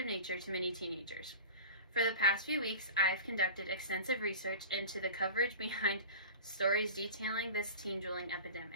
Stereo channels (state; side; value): inverted; both; correlation -0.36